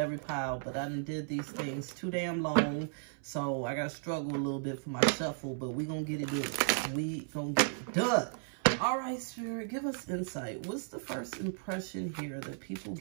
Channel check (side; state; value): left; silent; 55 dB below the other